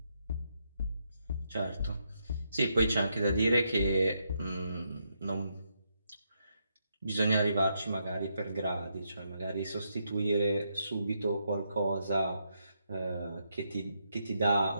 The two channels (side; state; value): both; inverted; correlation -0.79